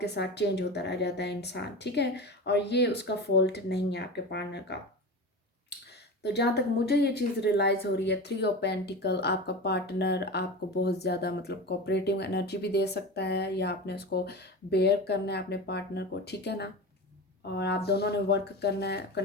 के साथ चेंज होता रह जाता है इंसान, ठीक है। और ये उसका फॉल्ट नहीं है आपके पार्टनर का। तो जहाँ तक मुझे ये चीज़ रियलाइज़ हो रही है, थ्री ऑफ पेंटिकल, आपका पार्टनर आपको बहुत ज़्यादा मतलब कोऑपरेटिव एनर्जी भी दे सकता है, या आपने उसको बेयर करना है अपने पार्टनर को, ठीक है ना। और आप दोनों ने वर्क करना है,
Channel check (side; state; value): both; normal; correlation 0.28